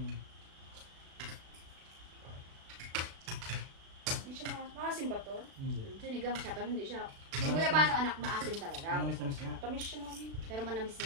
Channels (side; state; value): left; late; 36 ms